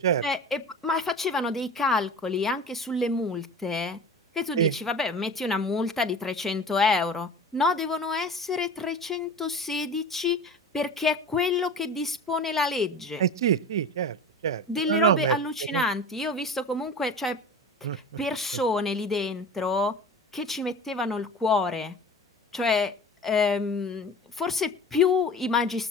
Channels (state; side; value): normal; both; correlation 0.36